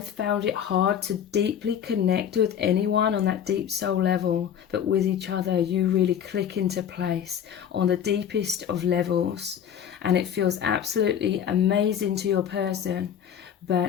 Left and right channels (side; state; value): right; quieter; 8.9 dB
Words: found it hard to deeply connect with anyone on that deep soul level, but with each other you really click into place on the deepest of levels, and it feels absolutely amazing to your person.